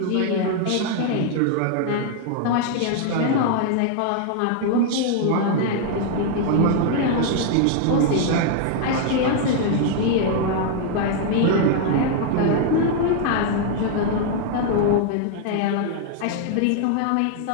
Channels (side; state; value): both; different; correlation 0.00